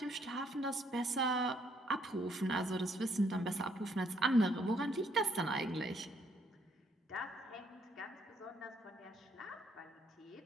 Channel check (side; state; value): both; normal; correlation 0.69